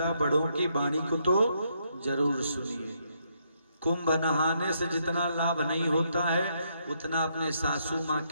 बड़ों की वाणी को तो जरूर सुनिए। कुंभ नहाने से जितना लाभ नहीं होता है उतना अपने सासू माँ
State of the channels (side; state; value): both; inverted; correlation -0.75